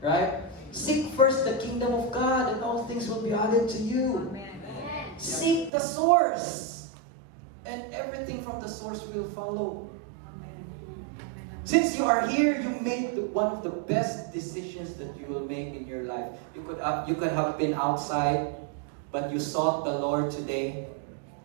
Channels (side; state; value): left; drops out; at 5.7 s